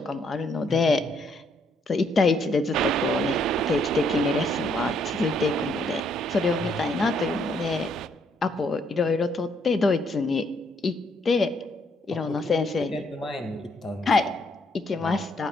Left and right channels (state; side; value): normal; both; correlation 0.71